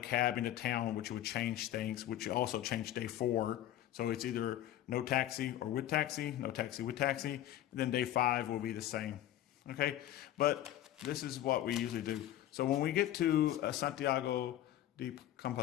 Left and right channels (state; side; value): quieter; right; 12.8 dB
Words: cab into town, which would change things, which also changed day 4. So it's either no taxi or with taxi, no taxi with taxi. And then day 5 will be the same. Okay, but this is what we usually do. So when we get to Santiago de